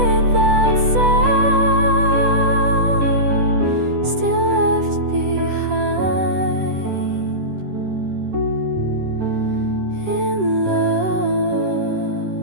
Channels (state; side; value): late; left; 10 ms